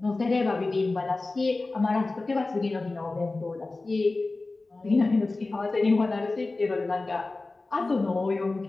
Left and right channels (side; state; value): right; quieter; 3.3 dB